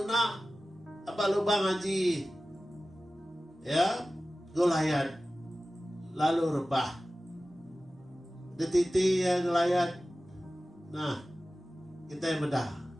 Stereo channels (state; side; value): normal; both; correlation 0.96